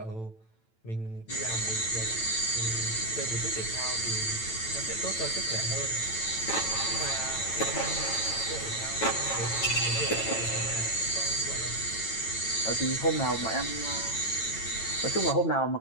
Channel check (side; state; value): right; late; 9.0 ms